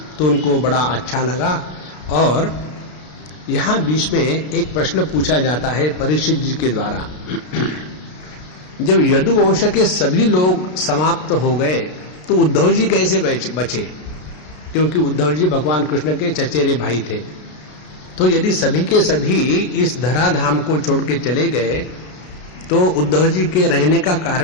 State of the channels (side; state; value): right; late; 33 ms